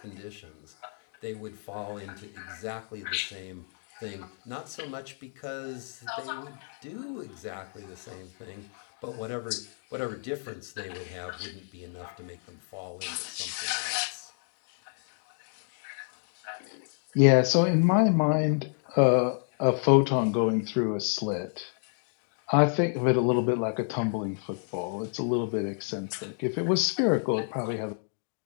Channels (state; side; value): silent; right; 58 dB below the other